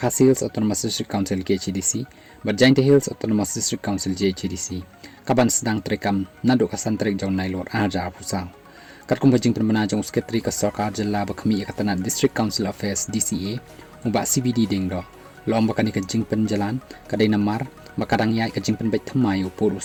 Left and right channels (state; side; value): identical; both; correlation 1.00